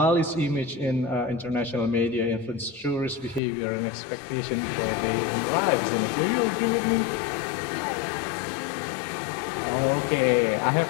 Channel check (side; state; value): right; drops out; at 3.4 s